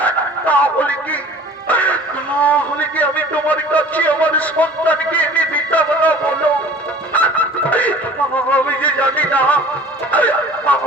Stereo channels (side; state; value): both; normal; correlation 0.45